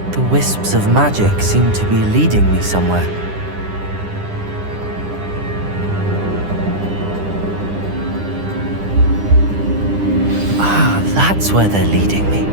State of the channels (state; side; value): late; left; 10 ms